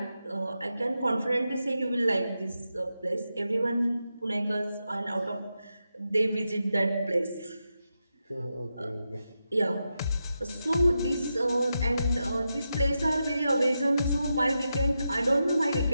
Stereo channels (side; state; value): both; inverted; correlation -0.88